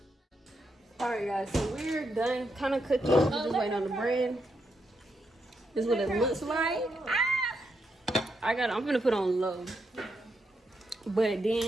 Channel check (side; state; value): both; normal; correlation 0.81